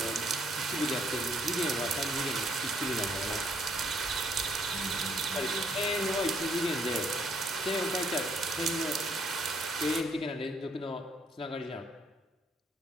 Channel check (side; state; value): both; normal; correlation 0.68